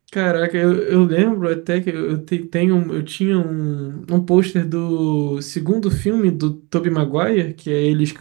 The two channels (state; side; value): quieter; left; 27.4 dB